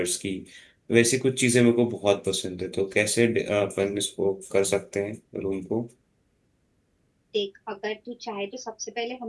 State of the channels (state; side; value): identical; both; correlation 1.00